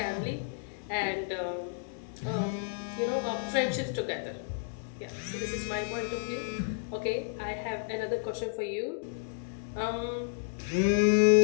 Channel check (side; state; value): right; silent; digital silence